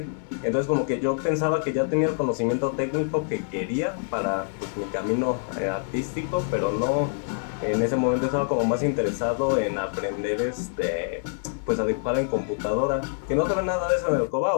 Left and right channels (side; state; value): right; silent; 58 dB below the other